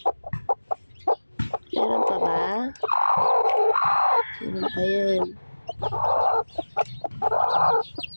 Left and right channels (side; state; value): both; inverted; correlation -1.00